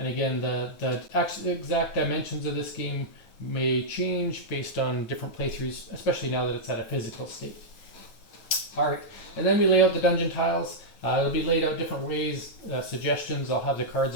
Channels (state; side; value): late; right; 9.2 ms